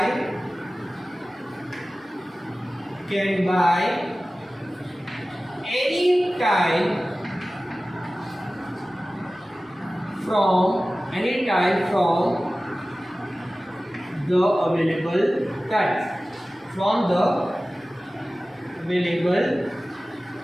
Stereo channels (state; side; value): normal; both; correlation 0.96